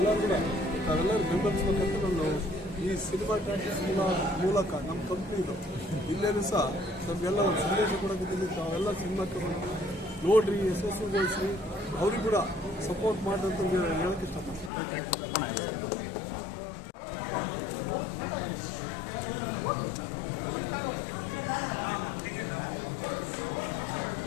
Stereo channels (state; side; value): drops out; right; at 14.7 s